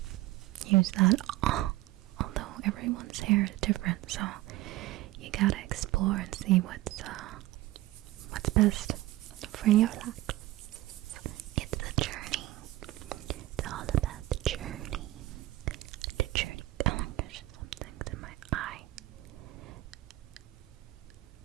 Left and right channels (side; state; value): left; quieter; 17.0 dB